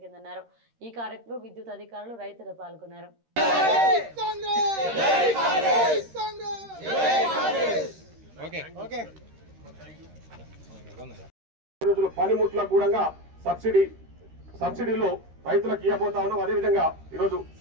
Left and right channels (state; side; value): late; left; 13 ms